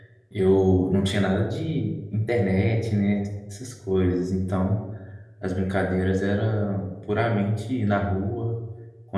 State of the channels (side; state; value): both; identical; correlation 1.00